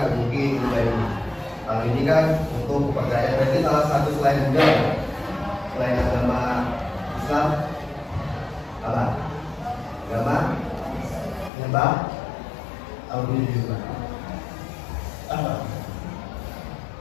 mungkin Buddha ini. Kalau ini kan untuk kepercayaan. Berarti salah satu selain Buddha, selain agama Islam apa? Agama nyembah atau juga apa?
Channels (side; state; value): right; drops out; at 11.5 s